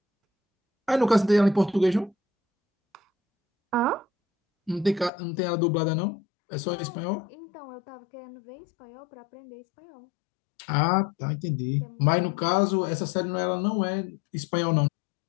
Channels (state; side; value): drops out; right; at 5.1 s